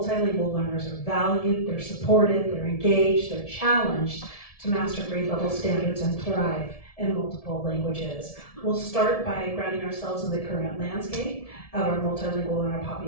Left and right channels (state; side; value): late; right; 1.7 ms